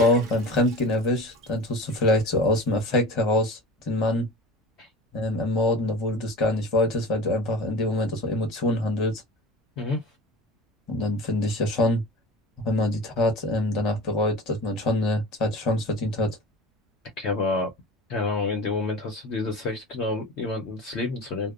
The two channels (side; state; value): both; normal; correlation 0.36